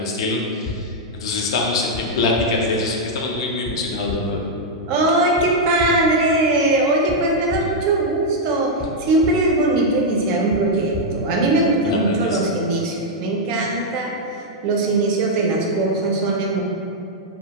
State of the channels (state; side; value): normal; both; correlation -0.03